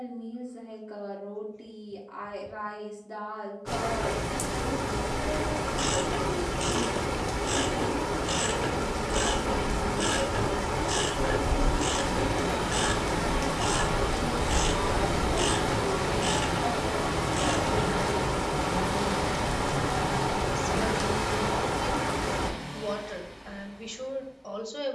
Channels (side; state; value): both; identical; correlation 1.00